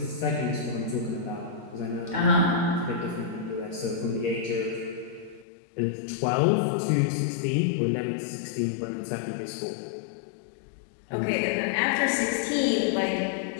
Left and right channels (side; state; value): right; drops out; at 5.5 s